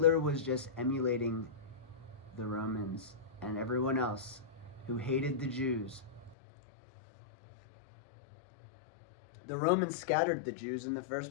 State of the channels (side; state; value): right; drops out; at 6.4 s